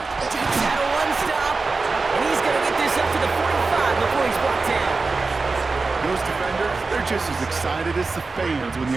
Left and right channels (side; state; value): left; quieter; 4.0 dB